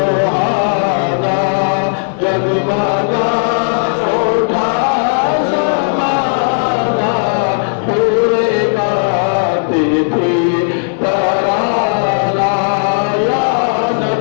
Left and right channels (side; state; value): right; silent; digital silence